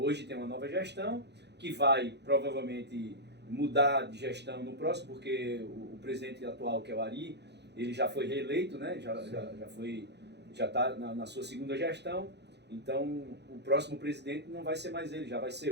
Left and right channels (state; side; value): late; left; 0.50 ms